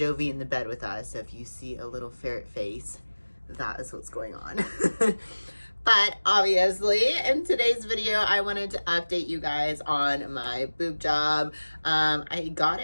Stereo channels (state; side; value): inverted; both; correlation -1.00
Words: in the bed with us. So if you see a little ferret face, that is what's going on. But obviously, in today's video, I wanted to update you guys on my boob job. I got